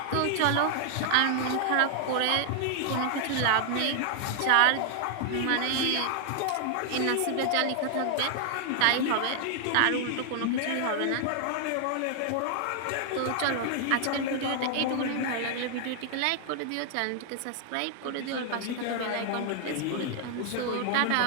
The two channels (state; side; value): different; both; correlation 0.00